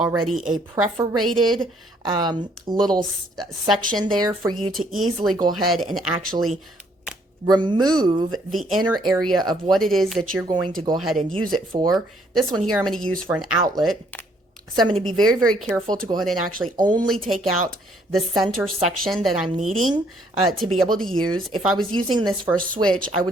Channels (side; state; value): both; normal; correlation 0.66